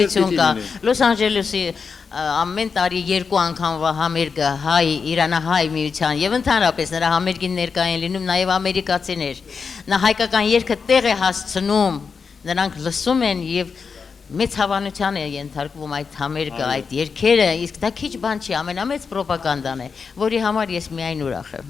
կա։ Լոս Անջելեսի ամեն տարի 2 անգամվա համերգը Իրանահայ միության եւ ընդհանրապես նրա համերգին ներկա են լինում նաեւ ամերիկացիներ։ Նա հայկական երգը տեղ է հասցնում, նրանք լսում են եւ մեծ հավանության է ենթարկվում այդ համերգը, այդ երգերը, իսկ դա քիչ բան չի, ամենամեծ պրոպագանդան է, որի համար ես միայն ուրախ եմ։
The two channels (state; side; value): quieter; right; 5.5 dB